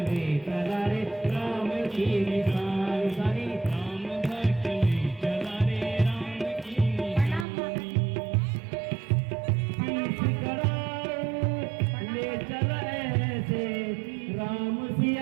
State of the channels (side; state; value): left; drops out; at 7.5 s